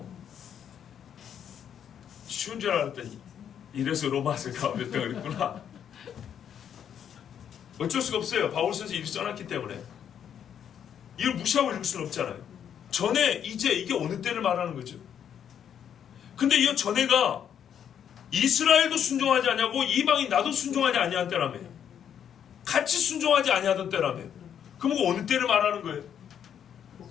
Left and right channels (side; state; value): right; quieter; 8.8 dB